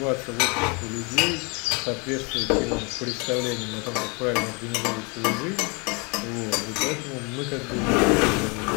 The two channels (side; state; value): right; quieter; 31.0 dB